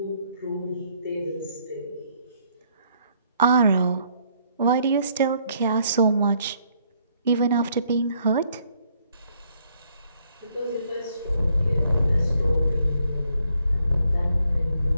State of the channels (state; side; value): inverted; both; correlation -0.69